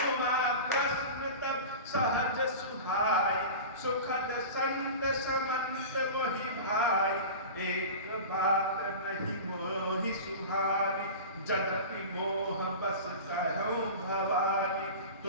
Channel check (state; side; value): inverted; both; correlation -0.32